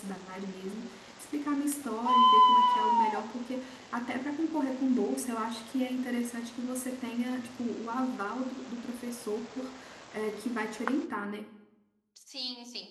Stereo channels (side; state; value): both; identical; correlation 1.00